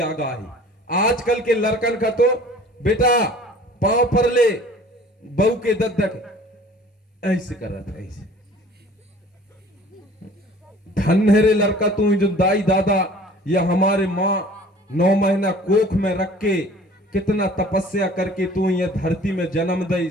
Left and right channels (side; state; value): both; normal; correlation 0.49